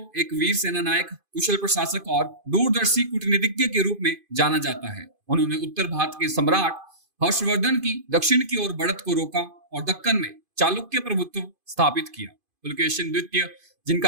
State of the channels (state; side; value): late; left; 2.5 ms